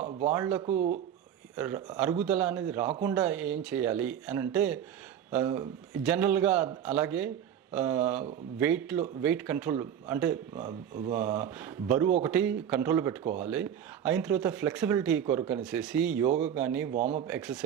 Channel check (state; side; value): quieter; left; 9.3 dB